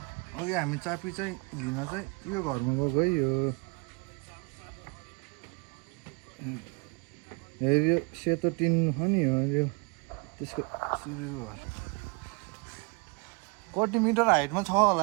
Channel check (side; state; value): left; quieter; 31.2 dB